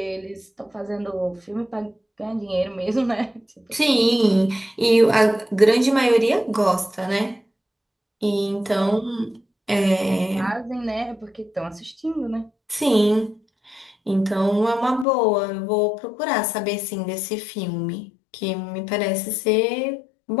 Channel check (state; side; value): drops out; right; at 15.1 s